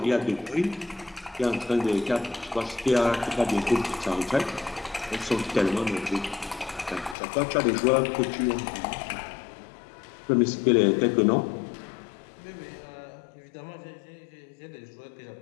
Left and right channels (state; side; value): drops out; right; at 7.2 s